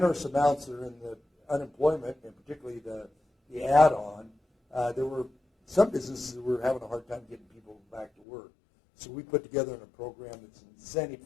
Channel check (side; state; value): right; drops out; at 8.1 s